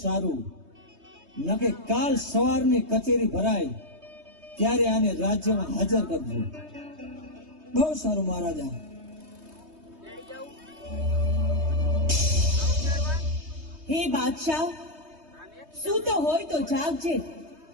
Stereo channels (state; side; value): late; left; 3.2 ms